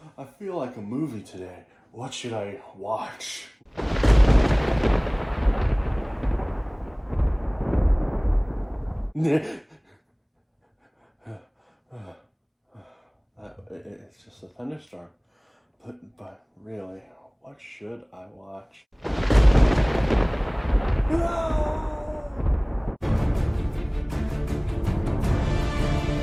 feel like a movie today. What should I watch? It's just a thunderstorm. But really, what should I watch?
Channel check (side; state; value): both; identical; correlation 1.00